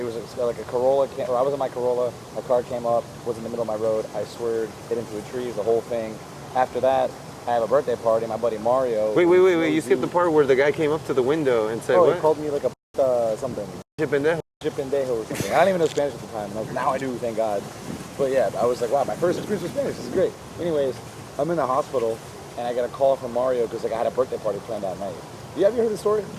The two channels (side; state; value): both; identical; correlation 1.00